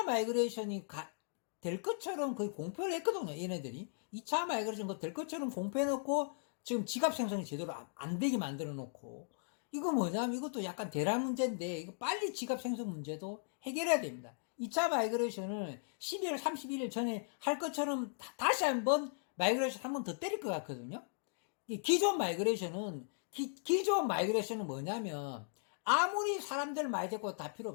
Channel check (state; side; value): silent; right; digital silence